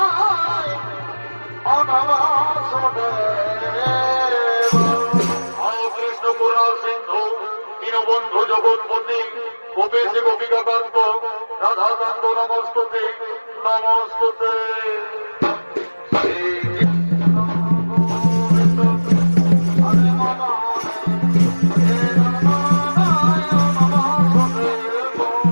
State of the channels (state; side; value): inverted; both; correlation -1.00